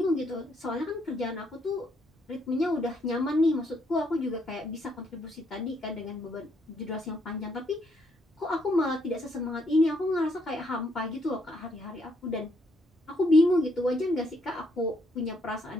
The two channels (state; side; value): normal; both; correlation 0.72